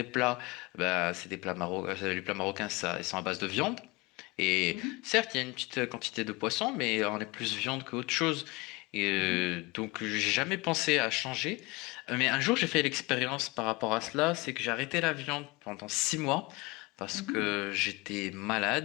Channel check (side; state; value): right; quieter; 24.4 dB